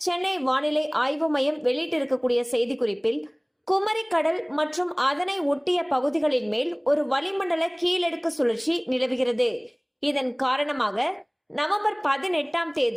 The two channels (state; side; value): identical; both; correlation 1.00